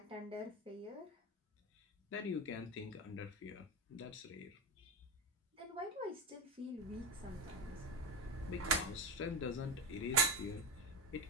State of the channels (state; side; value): normal; both; correlation 0.14